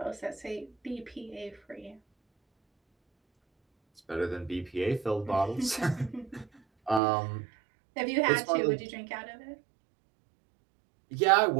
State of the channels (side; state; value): left; drops out; at 7.0 s